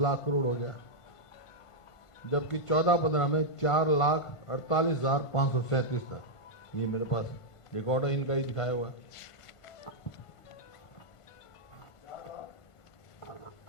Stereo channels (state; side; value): late; right; 1.5 ms